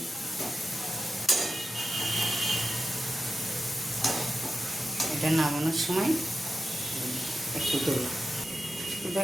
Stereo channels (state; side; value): normal; both; correlation 0.92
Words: এটা নামানোর সময় একটু দেবো। তো